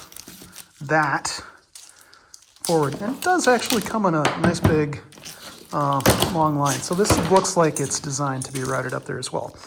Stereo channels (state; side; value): identical; both; correlation 1.00